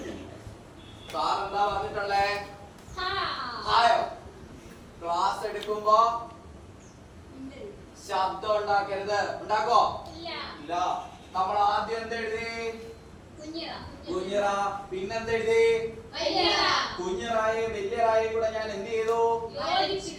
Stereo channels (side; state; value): both; identical; correlation 1.00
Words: സാറെന്താ പറഞ്ഞിട്ടുള്ളേ? ഹായോ? ക്ലാസ് എടുക്കുമ്പോ ശബ്ദം ഉണ്ടാക്കരുത്. ഉണ്ടാക്കോ? ഇല്ല. നമ്മൾ ആദ്യം എന്തെഴുതി? കുഞ്ഞറ. പിന്നെന്തെഴുതി? കുഞ്ഞറായും വലിയറായും കൂടെ ഞാൻ എന്ത് ചെയ്തു?